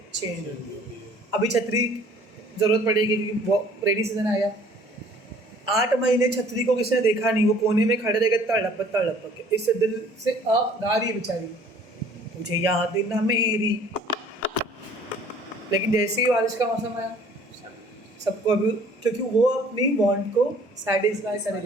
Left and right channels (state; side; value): normal; both; correlation 0.54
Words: चेंज होती है। अभी छतरी ज़रूरत पड़ेगी क्योंकि वो रेनी सीजन आया, 8 महीने छतरी को किसी ने देखा नहीं, वो कोने में खड़े रह गए तड़प के, इससे दिल से गा रही है बेचारी, मुझे याद ना मेरी। लेकिन जैसे ही बारिश का मौसम आया, सबको अभी, क्योंकि वो अपनी वांट को सेटिस्फाई